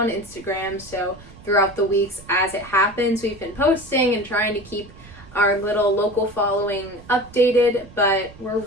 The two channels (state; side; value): noise; right; rumble, 20 dB below the sound